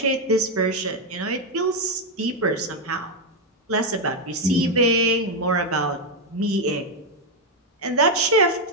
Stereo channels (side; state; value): both; normal; correlation 0.04